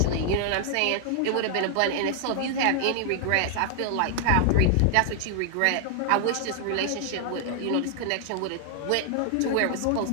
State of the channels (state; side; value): different; both; correlation 0.00